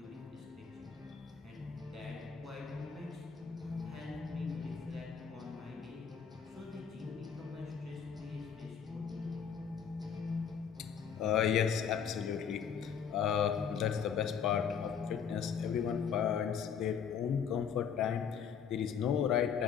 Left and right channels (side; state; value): right; quieter; 7.3 dB